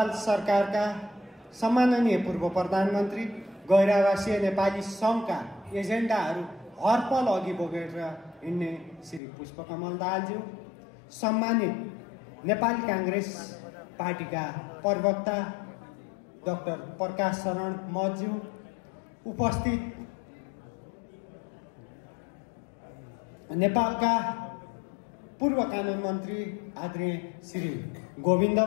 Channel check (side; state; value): right; drops out; at 9.2 s